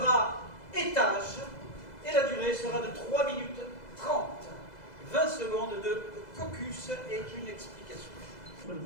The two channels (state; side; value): late; right; 2.0 ms